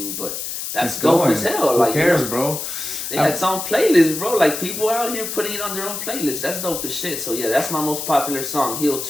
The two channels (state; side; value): noise; left; hiss, 5 dB below the sound